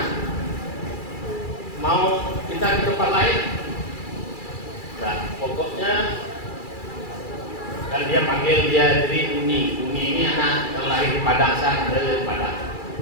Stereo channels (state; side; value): late; right; 2.3 ms